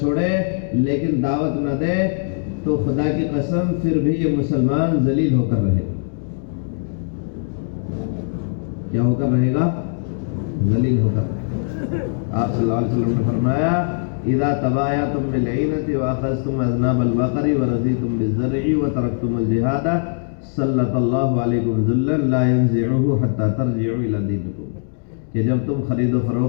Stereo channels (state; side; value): silent; right; digital silence